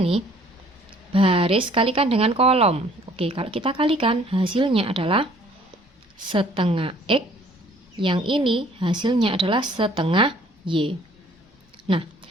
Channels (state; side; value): normal; both; correlation 0.57